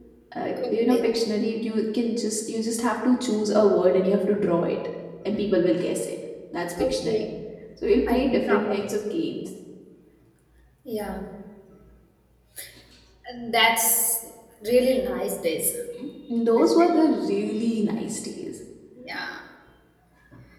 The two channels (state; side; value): identical; both; correlation 1.00